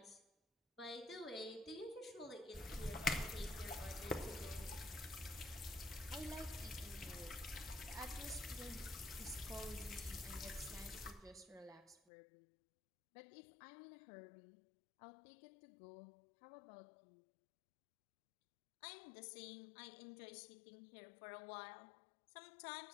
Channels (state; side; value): drops out; right; at 12.0 s